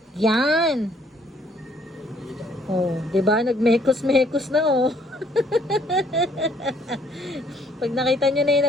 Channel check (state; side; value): normal; both; correlation 0.64